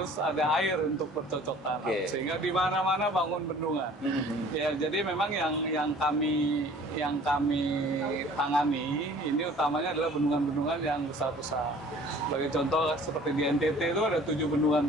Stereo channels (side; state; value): both; normal; correlation 0.50